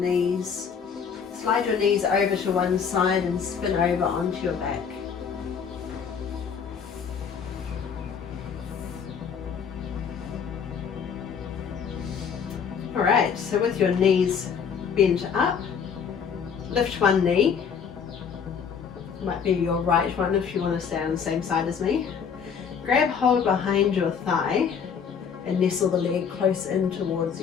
Slide your knees over to one side and spin over onto your back. Alright, so with your knees bent up, lift one knee. Might be your right one if you want to stay on the same side as me. Grab hold behind your thigh and nestle the leg close in towards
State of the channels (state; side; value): quieter; right; 6.8 dB